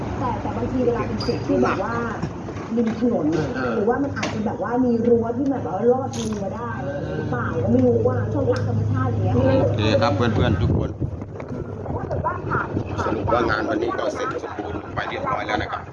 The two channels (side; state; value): both; identical; correlation 1.00